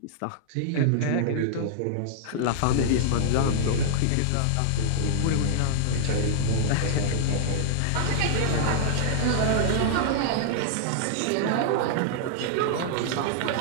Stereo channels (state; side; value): different; both; correlation -0.01